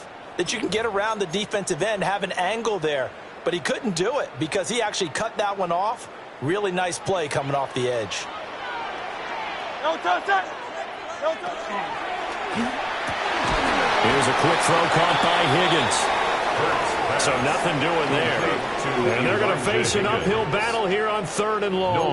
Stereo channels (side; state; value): both; identical; correlation 1.00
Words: that you can get around the defensive end, have an angle there. But he couldn't do it because he actually cut that one off. Really nice play coming off the edge. Here's a quick throw caught by Higgins. So nothing doing there. And they're going to face an uphill battle here on 3rd and long.